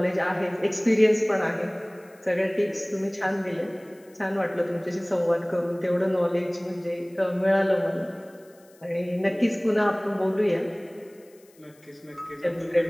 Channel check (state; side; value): noise; left; hiss, 30 dB below the sound